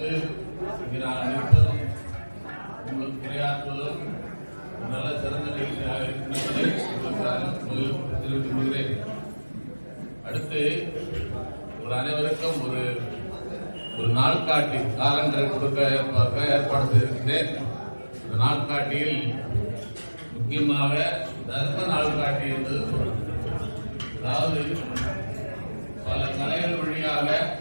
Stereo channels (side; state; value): both; inverted; correlation -1.00